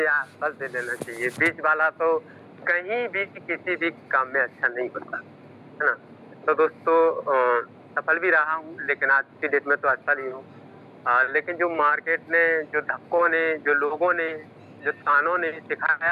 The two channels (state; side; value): identical; both; correlation 1.00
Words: या असफल से लेना चाहिए। बीच वाला तो कहीं भी किसी भी काम में अच्छा नहीं होता, है ना। तो दोस्तों, सफल भी रहा हूँ लेकिन आज की डेट में तो असफल ही हूँ। लेकिन जो मार्केट ने, जो धक्कों ने, जो लोगों ने, जो तानों ने